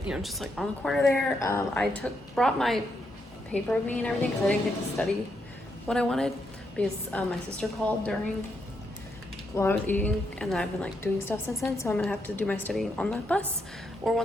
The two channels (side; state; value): both; normal; correlation 0.79